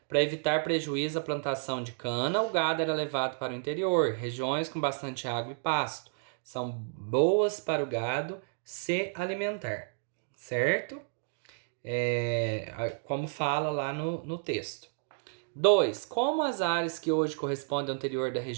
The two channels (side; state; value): left; silent; digital silence